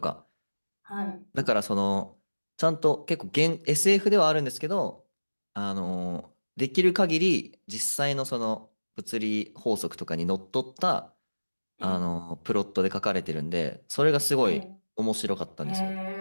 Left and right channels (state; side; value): inverted; both; correlation -1.00